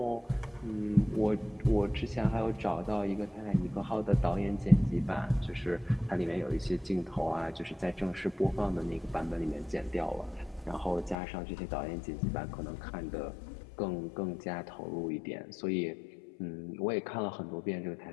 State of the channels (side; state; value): right; drops out; at 11.2 s